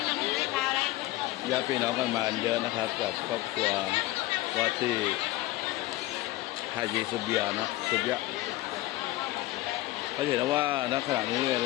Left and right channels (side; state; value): right; quieter; 17.4 dB